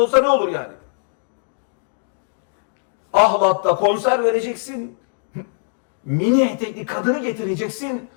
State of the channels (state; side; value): silent; right; digital silence